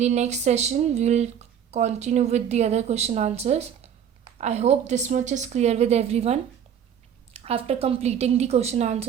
next session we will continue with the other question answers. I hope this much is clear with everyone. After completing the question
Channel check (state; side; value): quieter; left; 8.7 dB